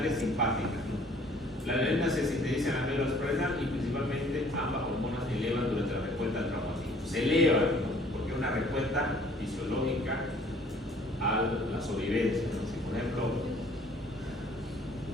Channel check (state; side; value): normal; both; correlation 0.56